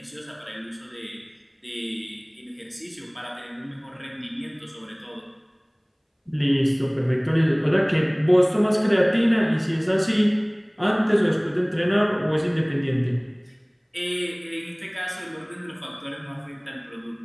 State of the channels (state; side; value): identical; both; correlation 1.00